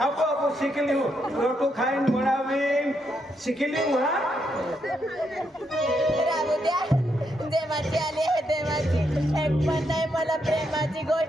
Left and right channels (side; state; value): both; normal; correlation 0.79